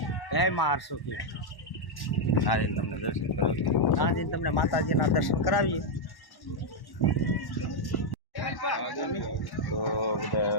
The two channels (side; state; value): right; late; 1.1 ms